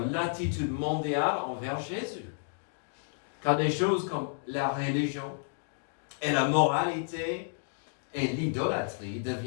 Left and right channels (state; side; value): silent; right; digital silence